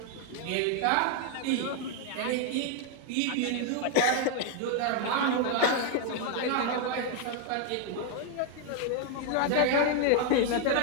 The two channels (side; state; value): both; different; correlation 0.00